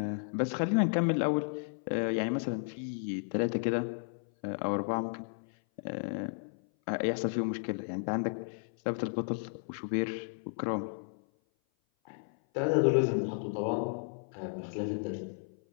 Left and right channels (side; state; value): right; silent; 56 dB below the other